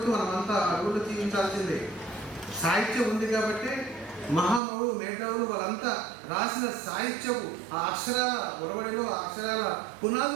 మనమంతా అడుగులు జీవించాల్సిందే. సాహిత్యం ఉంది కాబట్టి మహామహులు, మేధావులు వాళ్ళంతా రాసిన సాహిత్యపు ఆ అక్షరాల ఒరవడిలో, ఆ అక్షరాల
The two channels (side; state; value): left; drops out; at 4.6 s